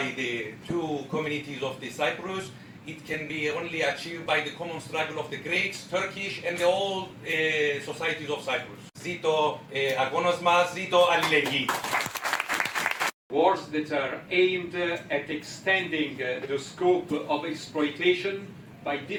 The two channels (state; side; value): identical; both; correlation 1.00